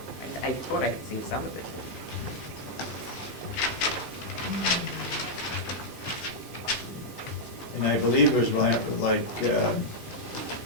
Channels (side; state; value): both; normal; correlation -0.05